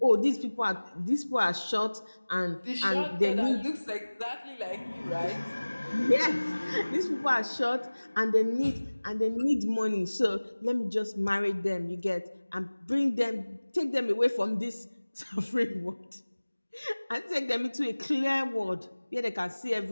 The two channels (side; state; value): both; inverted; correlation -1.00